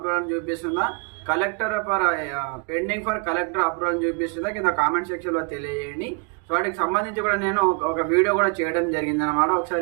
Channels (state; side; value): quieter; left; 33.0 dB